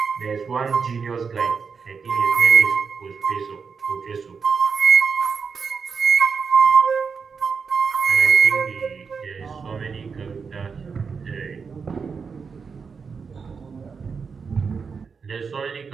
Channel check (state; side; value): quieter; left; 5.6 dB